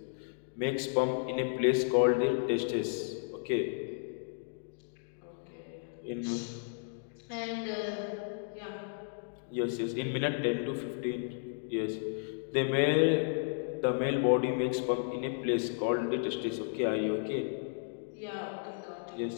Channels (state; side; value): silent; right; digital silence